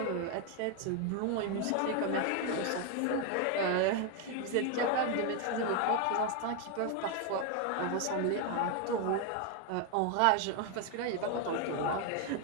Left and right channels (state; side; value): different; both; correlation 0.01